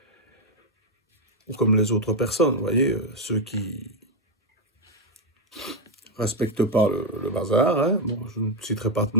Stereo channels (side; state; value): both; normal; correlation 0.06